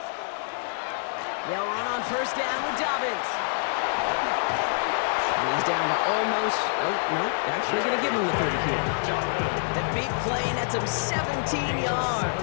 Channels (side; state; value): right; silent; digital silence